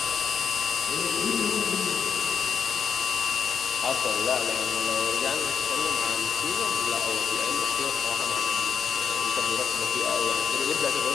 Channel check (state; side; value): quieter; right; 7.1 dB